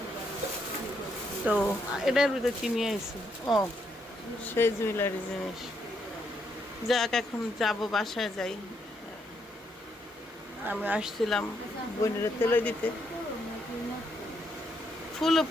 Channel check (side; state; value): both; normal; correlation 0.76